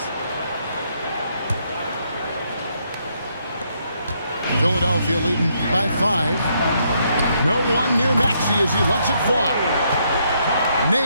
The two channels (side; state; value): both; inverted; correlation -0.74